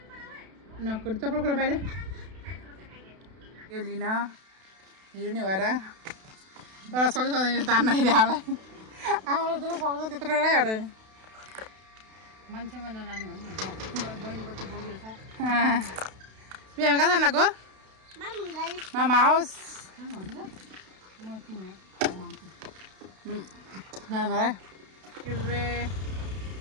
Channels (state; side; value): late; left; 32 ms